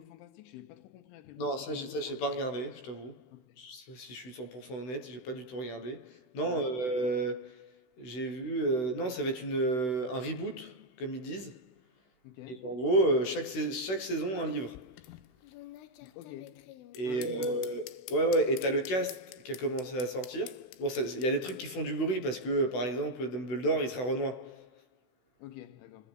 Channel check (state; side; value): late; right; 16 ms